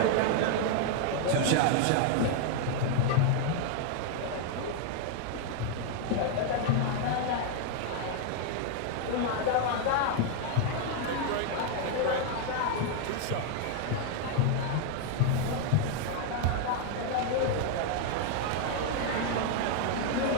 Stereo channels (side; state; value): both; different; correlation 0.00